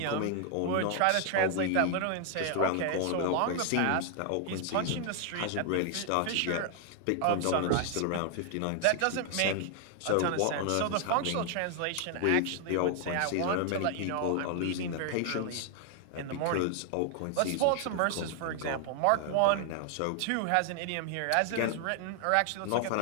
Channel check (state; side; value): different; both; correlation 0.00